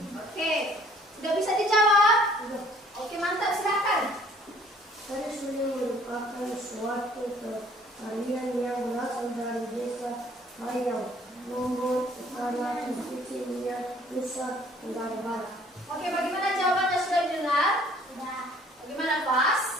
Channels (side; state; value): both; normal; correlation 0.57